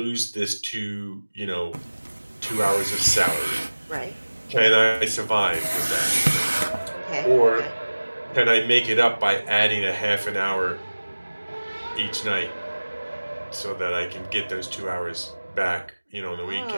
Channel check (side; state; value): both; inverted; correlation -1.00